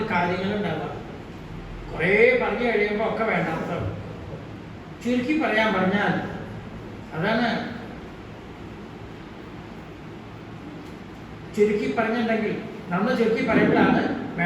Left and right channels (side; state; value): both; identical; correlation 1.00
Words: കാര്യങ്ങളുണ്ടാവുക. കുറേ പറഞ്ഞു കഴിയുമ്പോൾ ഒക്കെ വേണ്ടാത്തതാണ്. ചുരുക്കി പറഞ്ഞാൽ അതാണ്. ചുരുക്കി പറഞ്ഞിട്ടുണ്ടെങ്കിൽ നമ്മൾ ചുരുക്കി പറയുമ്പോഴാണ്